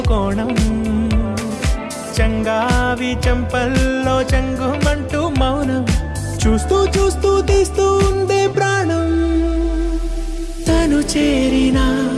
కోణం చంగావి చంపల్లో చంగుమంటూ మౌనం చూస్తూ చూస్తూ తీస్తూ ఉందే ప్రాణం తను చేరిన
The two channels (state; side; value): identical; both; correlation 1.00